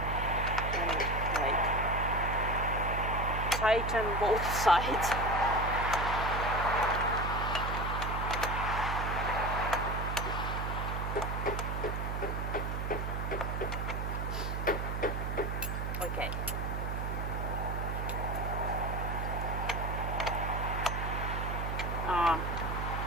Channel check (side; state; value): right; noise; hum, 2 dB below the sound